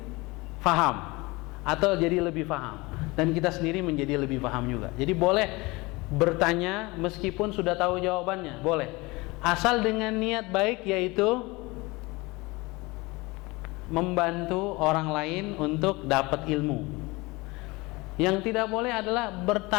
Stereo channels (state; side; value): quieter; right; 23.6 dB